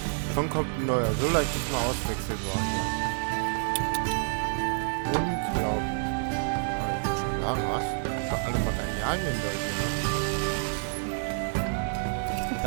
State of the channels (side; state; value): left; silent; 59 dB below the other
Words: Schon kommt ein neuer. So leicht ist mal auswechselbar hier. Unglaublich. Aber ich will schon sagen, was? Für alle Materialien da hier.